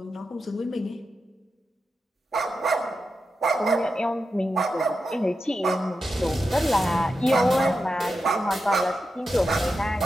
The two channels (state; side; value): normal; both; correlation 0.89